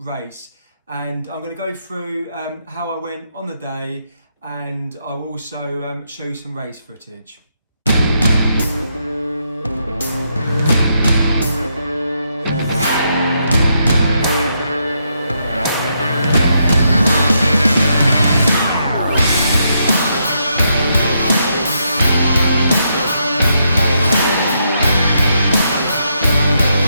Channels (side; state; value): both; inverted; correlation -0.78